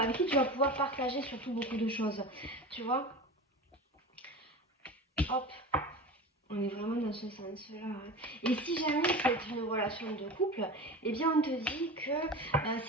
qui tu vas pouvoir partager surtout beaucoup de choses. Tu vois? Hop, on est vraiment dans ce sens-là. Et si jamais c'est une relation de couple, eh bien on te dit que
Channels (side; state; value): both; normal; correlation 0.31